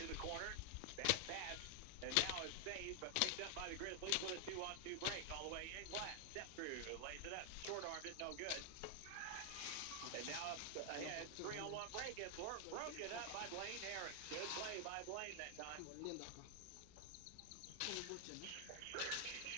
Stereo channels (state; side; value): different; both; correlation 0.00